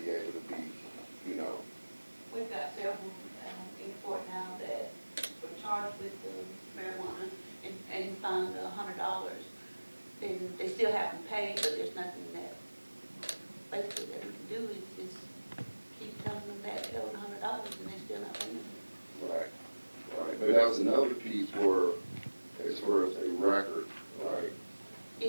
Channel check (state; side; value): inverted; both; correlation -1.00